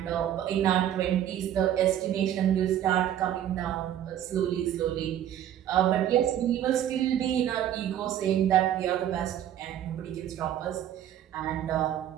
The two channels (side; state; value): left; quieter; 11.1 dB